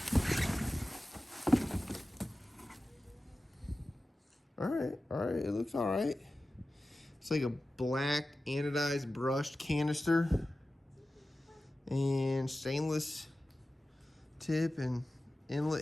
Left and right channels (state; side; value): normal; both; correlation 0.95